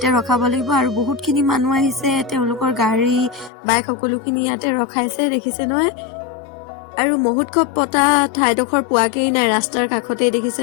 ৰখাব লাগিব। আৰু বহুতখিনি মানুহ আহিছে, তেওঁলোকৰ গাড়ী বাইক সকলোখিনি ইয়াতে ৰখাইছে, দেখিছে নহয়। আৰু মহোৎসৱ পতা ঠাইডোখৰ পোৱাকেই নাই, ৰাস্তাৰ কাষতে দেখিছে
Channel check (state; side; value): drops out; right; at 3.5 s